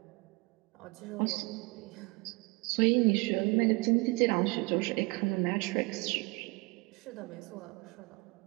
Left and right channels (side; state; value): left; quieter; 27.4 dB